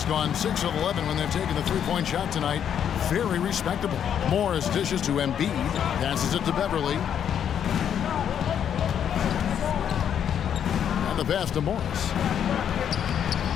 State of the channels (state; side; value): quieter; right; 8.9 dB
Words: gone 6 of 11 when they've taken the three-point shot tonight. Very respectable. Morris dishes to Embiid. Passes it to Beverly. And the pass to Morris.